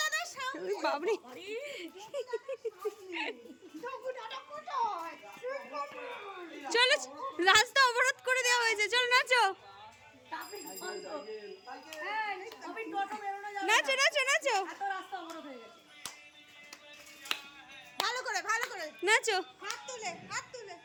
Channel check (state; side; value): identical; both; correlation 1.00